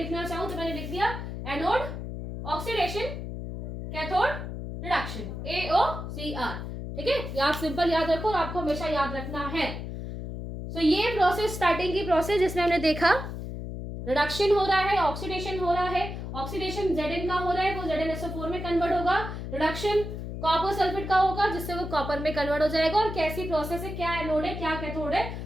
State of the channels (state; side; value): noise; left; hum, 7 dB below the sound